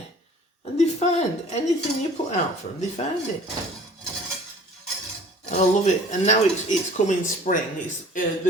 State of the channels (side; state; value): both; normal; correlation 0.49